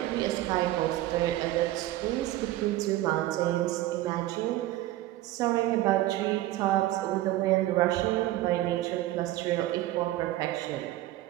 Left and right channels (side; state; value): left; quieter; 15.6 dB